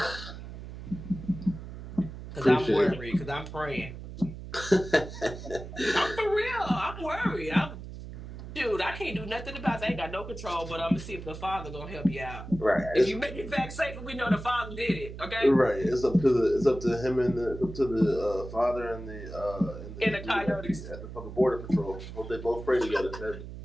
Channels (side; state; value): right; noise; hum, 11 dB below the sound